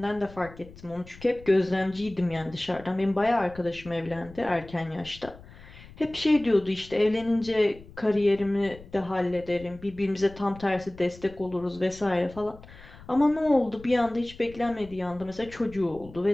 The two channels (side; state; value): left; noise; rumble, 19 dB below the sound